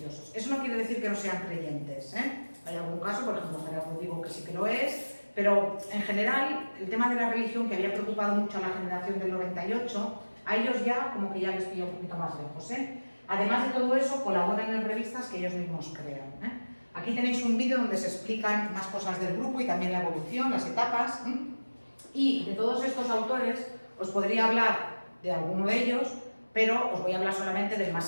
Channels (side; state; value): both; inverted; correlation -1.00